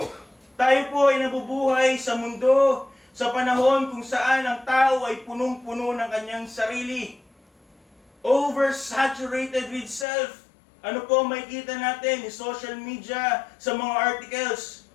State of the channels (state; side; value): drops out; right; at 10.1 s